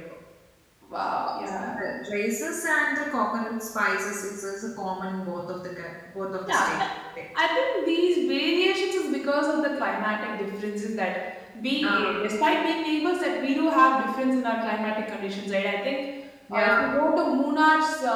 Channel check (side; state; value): both; identical; correlation 1.00